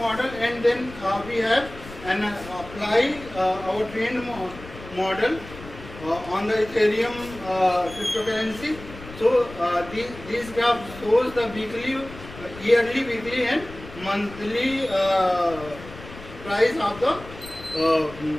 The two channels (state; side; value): noise; left; rumble, 15 dB below the sound